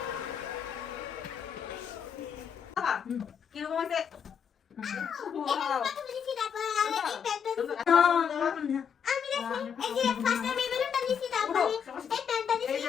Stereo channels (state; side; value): quieter; right; 7.5 dB